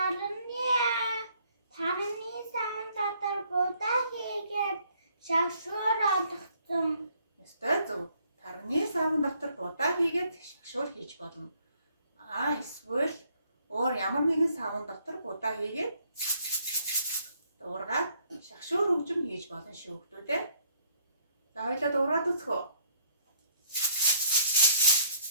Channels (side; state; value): both; inverted; correlation -0.64